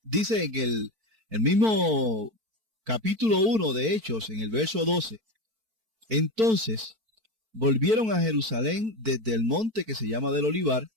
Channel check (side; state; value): left; late; 4.5 ms